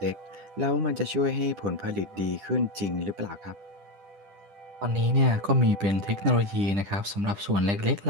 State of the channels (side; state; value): left; late; 10 ms